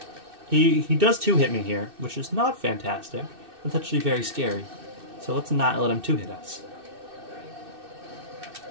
He does two-hit me here, which is not fantastic. That's actually very scary. So let's not let him two-hit us.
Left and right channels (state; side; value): late; left; 2.6 ms